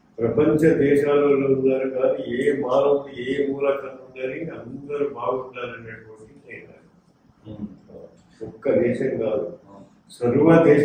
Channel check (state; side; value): identical; both; correlation 1.00